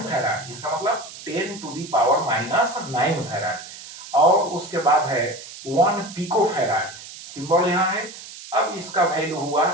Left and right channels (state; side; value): noise; right; hiss, 14 dB below the sound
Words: फैराड, इसका मतलब 10 to the power minus 9 farad. और उसके बाद है 1 पिको फैराड, सिंबल यहां है। अब इसका वैल्यू हुआ